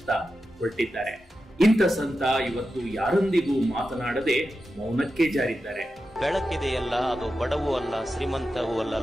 ಹೊರಟಿದ್ದಾರೆ. ಇಂಥ ಸಂತ ಇವತ್ತು ಯಾರೊಂದಿಗೂ ಮಾತನಾಡದೆ ಮೌನಕ್ಕೆ ಜಾರಿದ್ದಾರೆ. ಬೆಳಕಿದೆಯಲ್ಲ, ಅದು ಬಡವೂ ಅಲ್ಲ, ಶ್ರೀಮಂತವೂ ಅಲ್ಲ,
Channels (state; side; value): normal; both; correlation 0.90